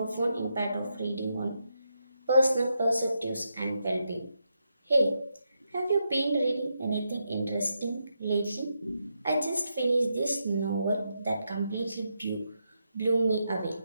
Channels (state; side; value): inverted; both; correlation -0.83